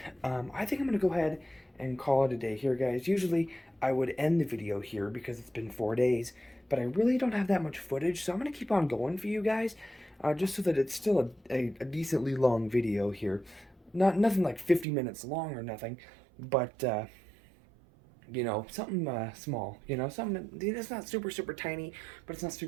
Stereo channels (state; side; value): drops out; left; at 14.9 s